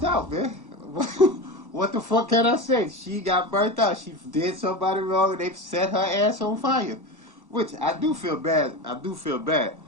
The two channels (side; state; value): left; late; 1.1 ms